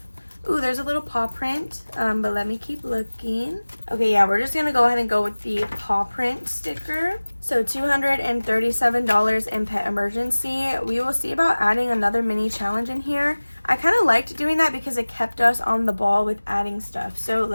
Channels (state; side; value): inverted; both; correlation -1.00